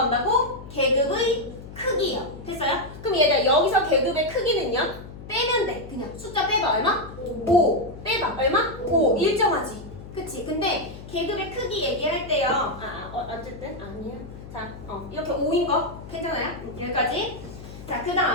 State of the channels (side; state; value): left; noise; hum, 14 dB below the sound